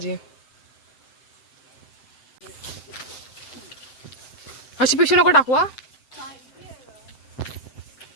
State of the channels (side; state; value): right; late; 7.8 ms